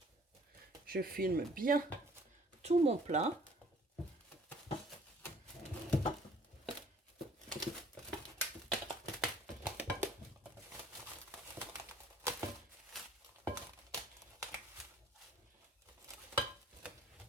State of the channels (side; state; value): both; normal; correlation 0.56